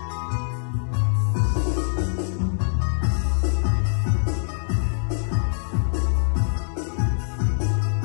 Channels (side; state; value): right; silent; digital silence